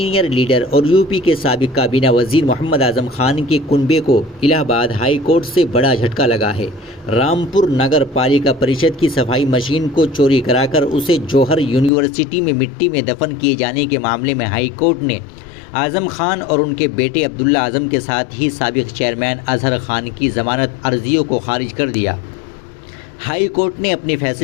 لیڈر اور یو پی کے سابق کابینہ وزیر محمد اعظم خان کے کنبے کو الہ آباد ہائی کورٹ سے بڑا جھٹکا لگا ہے۔ رامپور نگر پالیکا پریشد کی صفائی مشین کو چوری کرا کر اسے جوہر یونیورسٹی میں مٹی میں دفن کیے جانے کے معاملے میں ہائی کورٹ نے اعظم خان اور ان کے بیٹے عبداللہ اعظم کے ساتھ ہی سابق چیئرمین اظہر خان کی ضمانت عرضیوں کو خارج کر دیا۔ ہائی کورٹ نے اپنے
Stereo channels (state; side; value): drops out; right; at 11.9 s